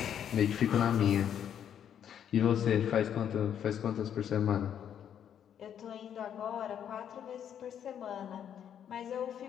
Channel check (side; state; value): right; quieter; 9.2 dB